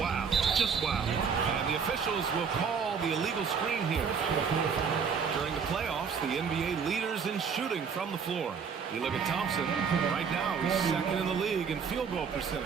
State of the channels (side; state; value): left; quieter; 6.2 dB